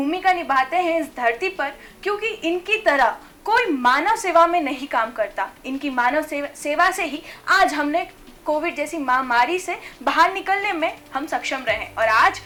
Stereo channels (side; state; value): both; identical; correlation 1.00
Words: निभाते हैं इस धरती पर, क्योंकि इनकी तरह कोई मानव सेवा में नहीं काम करता। इनकी मानव सेवा से ही आज हमने कोविड जैसी महामारी से बाहर निकलने में हम सक्षम रहे। और आज